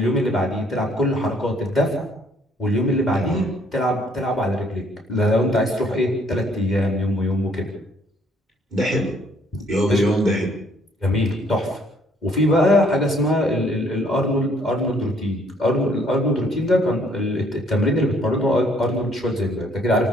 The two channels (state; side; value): normal; both; correlation 0.64